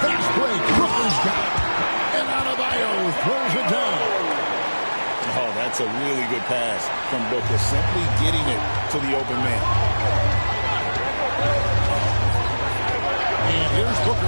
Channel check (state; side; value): inverted; both; correlation -1.00